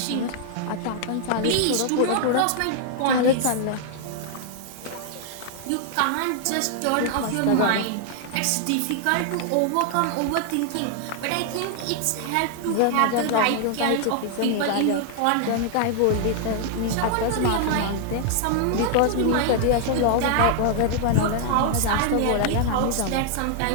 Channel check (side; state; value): both; different; correlation 0.00